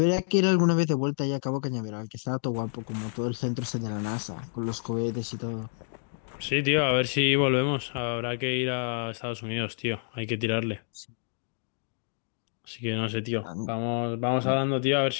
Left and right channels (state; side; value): silent; right; digital silence